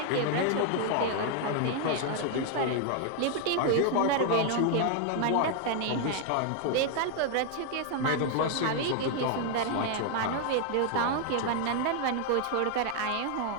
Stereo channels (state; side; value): different; both; correlation 0.00